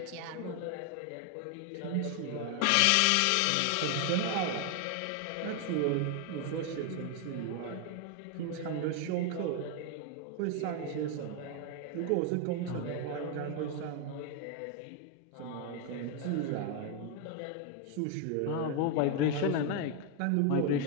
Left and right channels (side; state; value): both; different; correlation 0.01